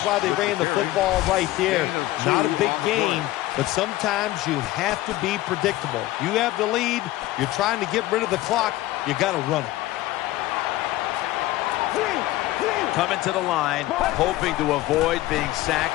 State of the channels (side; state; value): right; quieter; 16.8 dB